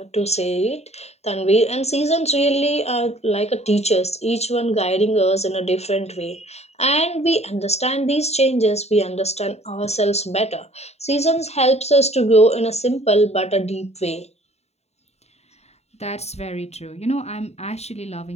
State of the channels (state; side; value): late; right; 0.31 ms